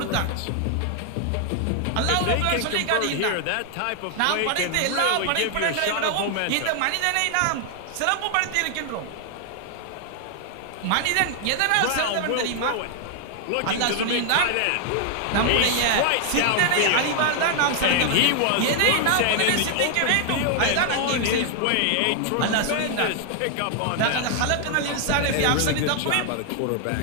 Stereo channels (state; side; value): different; both; correlation 0.00